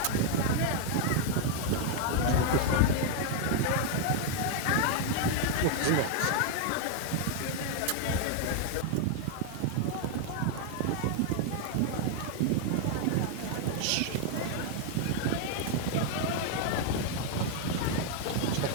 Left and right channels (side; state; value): both; different; correlation 0.00